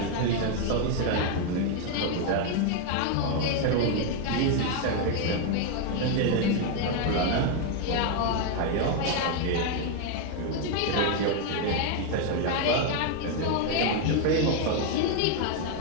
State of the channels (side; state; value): both; different; correlation 0.01